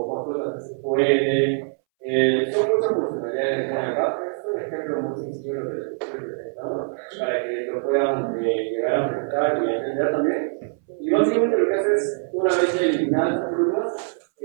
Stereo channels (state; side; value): silent; left; 63 dB below the other